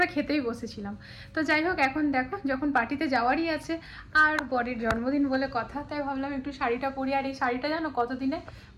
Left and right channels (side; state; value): both; identical; correlation 1.00